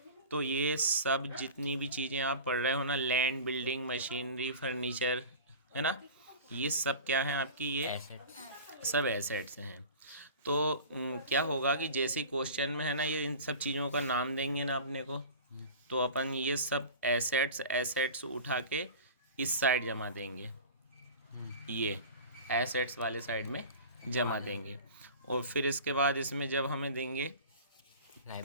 तो ये सब जितनी भी चीज़ें आप पढ़ रहे हो ना, लैंड, बिल्डिंग, मशीनरी, फर्नीचर, है ना, ये सब क्या है आपकी, ये सब एसेट्स हैं। तो क्या होगा कि जैसे ही क्वेश्चन में है ना, ये इन सब चीज़ों का नाम देंगे ना अपने को, तो अपन ये सब एसेट्स एसेट्स उठा के इस साइड जमा देंगे, ये एसेट्स वाले साइड में जमा देंगे। और फिर इसके बाद इसमें जब हमें देंगे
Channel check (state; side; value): inverted; both; correlation -0.37